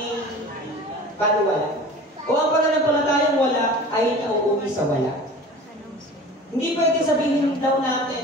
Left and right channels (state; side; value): normal; both; correlation 0.39